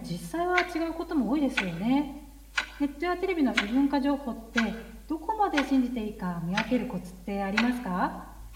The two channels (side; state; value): both; identical; correlation 1.00